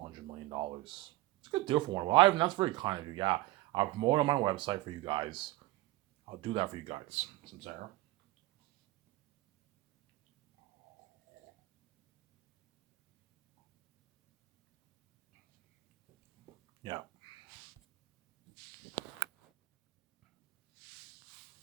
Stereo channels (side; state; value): left; quieter; 18.1 dB